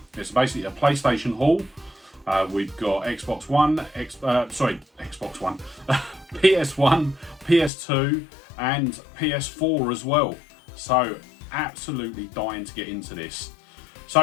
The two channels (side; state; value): right; drops out; at 7.7 s